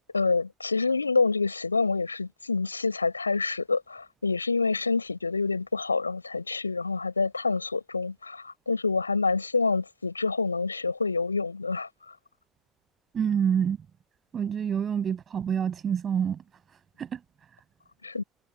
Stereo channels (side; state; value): both; inverted; correlation -0.59